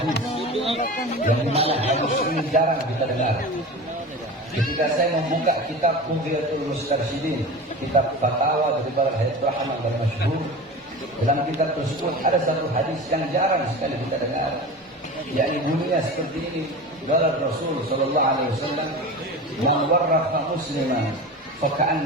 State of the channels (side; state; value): both; normal; correlation 0.31